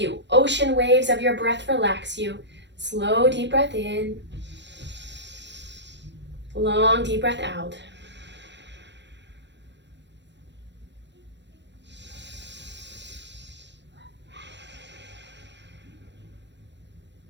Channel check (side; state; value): left; late; 0.52 ms